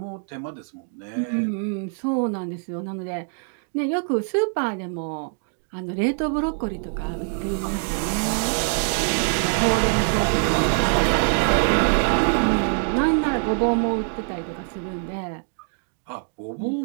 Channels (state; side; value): silent; left; 56 dB below the other